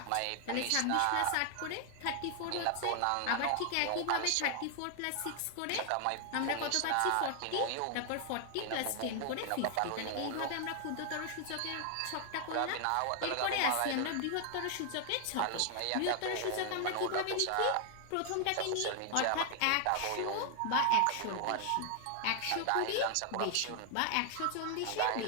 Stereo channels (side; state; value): both; different; correlation 0.00